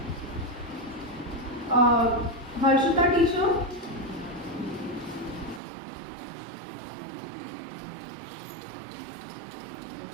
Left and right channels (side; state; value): left; drops out; at 5.6 s